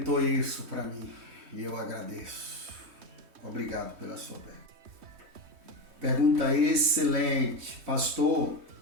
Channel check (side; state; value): left; late; 3.2 ms